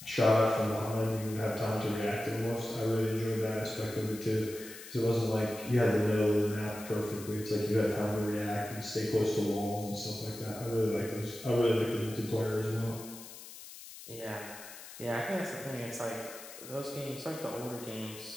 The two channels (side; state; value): left; noise; hiss, 14 dB below the sound